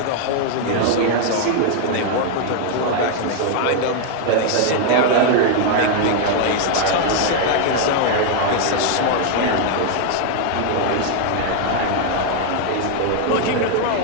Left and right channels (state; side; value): different; both; correlation 0.00